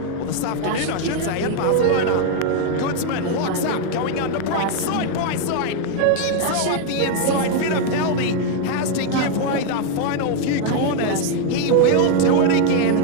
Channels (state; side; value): different; both; correlation 0.01